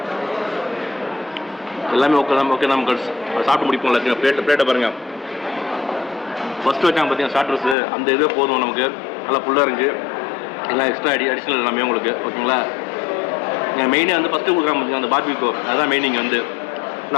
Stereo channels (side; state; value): right; drops out; at 7.8 s